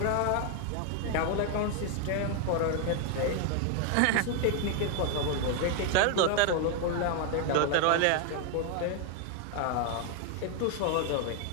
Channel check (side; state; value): both; different; correlation 0.00